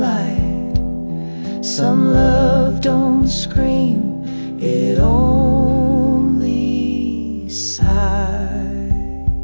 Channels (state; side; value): inverted; both; correlation -1.00